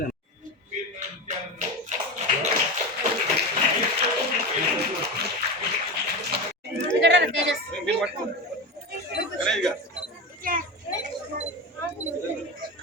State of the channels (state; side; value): normal; both; correlation 0.22